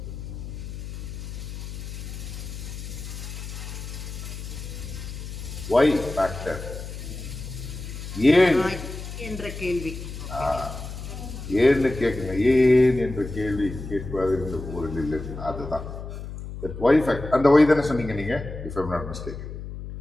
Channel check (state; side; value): noise; left; hum, 9 dB below the sound